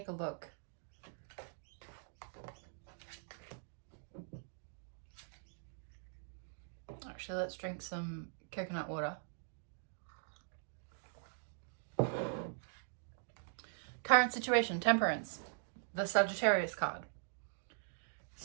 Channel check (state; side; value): silent; left; digital silence